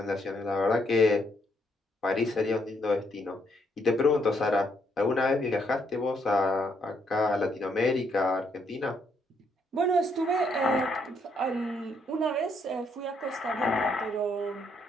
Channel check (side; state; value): both; normal; correlation 0.73